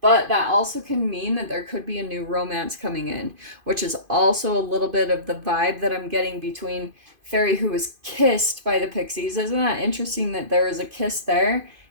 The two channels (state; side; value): late; left; 2.5 ms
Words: that also can mean that there could be a new romance coming in, which is also a little bit of the vibe that I'm getting between Fairy Who Was Kissed by the Pixies. Isn't that interesting that there is a kiss there